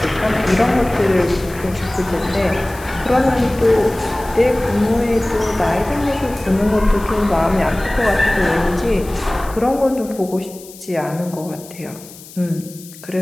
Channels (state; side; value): noise; left; hiss, 19 dB below the sound